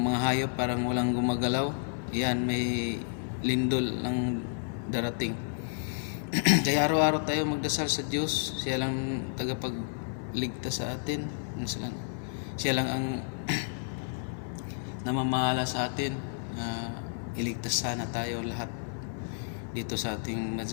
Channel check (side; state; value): right; silent; 57 dB below the other